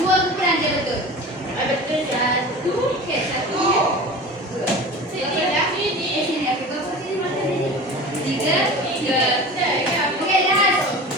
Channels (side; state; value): both; normal; correlation 0.35